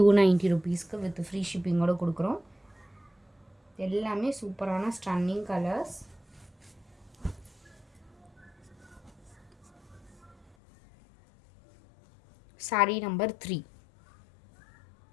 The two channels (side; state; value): right; drops out; at 10.6 s